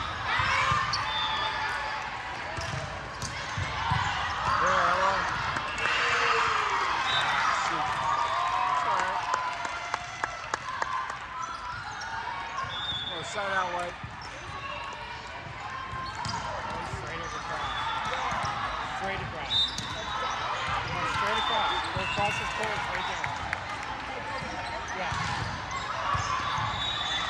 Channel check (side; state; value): both; identical; correlation 1.00